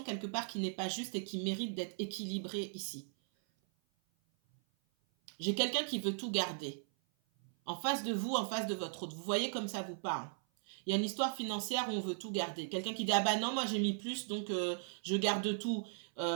quelque part qui n'est pas juste et qui mérite d'être équilibrée ici. J'ai quelqu'un qui veut tout garder. En face de vous, en face de votre autre. Vous voyez comme ça vous parle. Il y a une histoire financière où on veut tout garder. Quelqu'un qui dit « Ah bah non, moi j'ai mis plus, donc je garde tout. »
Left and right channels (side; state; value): left; silent; 53 dB below the other